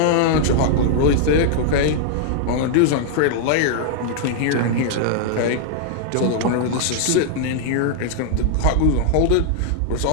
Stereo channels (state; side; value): different; both; correlation -0.01